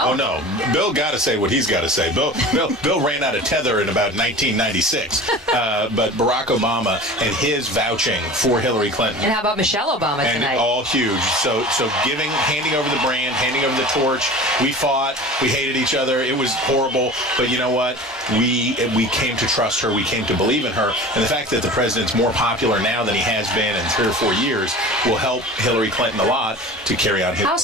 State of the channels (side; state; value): both; normal; correlation 0.37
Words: no, Bill got to say what he's got to say. Bill ran out of tether in about 1996. But Barack Obama and his vouching for Hillary Clinton. And how about Michelle Obama tonight? And all huge. So handing over the brand, handing over the torch. We fought. We hated each other. It was horrible. But you know what? we came to trust her, we came to believe in her, and the fact that the president's more popular now than he has been in 3 or 4 years will help Hillary Clinton a lot to carry on his. How